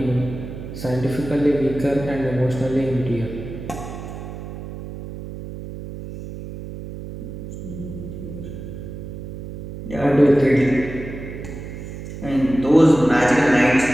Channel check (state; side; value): noise; right; hum, 10 dB below the sound